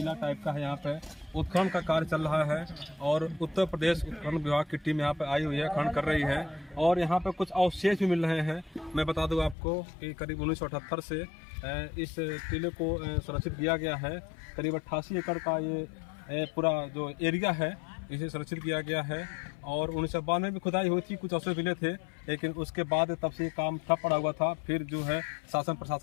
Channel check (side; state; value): right; drops out; at 9.6 s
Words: टाइप का है। यहाँ पे उत्खनन का कार्य चल रहा है और उत्तर प्रदेश उत्खनन विभाग की टीम यहाँ पे आई हुई है, खनन कर रही है और यहाँ पे कुछ अवशेष भी मिल रहे हैं। मैं बता दूं आपको कि करीब 1978 से इस टीले को सुरक्षित किया गया है। करीब 88 एकड़ का ये पूरा जो एरिया है इसे सुरक्षित किया गया है और 1992 में भी खुदाई हुई थी, कुछ अवशेष मिले थे, लेकिन उसके बाद तब से काम ठप पड़ा हुआ था। फिर जो है शासन